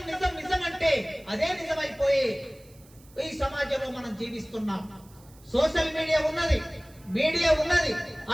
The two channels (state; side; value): noise; right; hiss, 27 dB below the sound